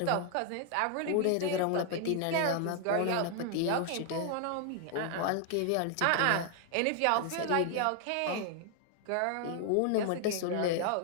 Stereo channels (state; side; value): different; both; correlation 0.00